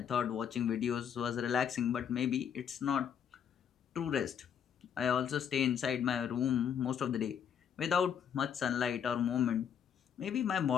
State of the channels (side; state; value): right; quieter; 8.1 dB